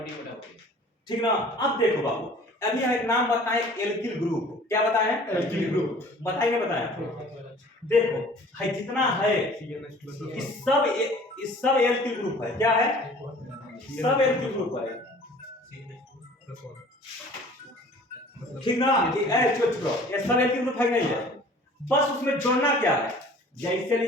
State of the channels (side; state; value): both; normal; correlation 0.49